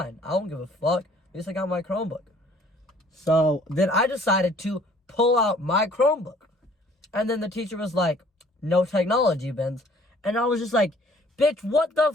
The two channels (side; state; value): both; normal; correlation 0.57